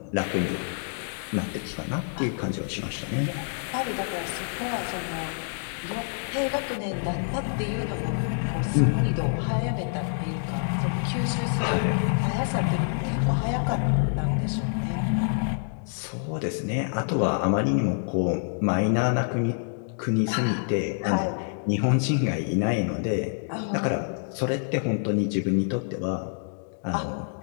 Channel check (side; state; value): right; silent; digital silence